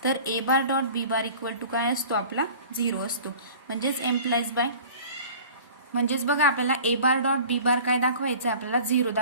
तर A bar dot B bar equal to काय असतो आपला 0 असतो म्हणजेच एम्प्लाइज बाय म्हणजेच बघा आपल्याला ए बार डॉट बी बार काय दाखवायचं आहे आपल्याला 0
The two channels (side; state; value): both; inverted; correlation -0.44